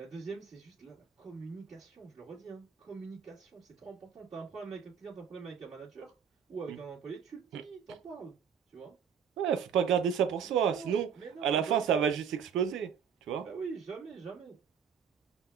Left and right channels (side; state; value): left; quieter; 7.5 dB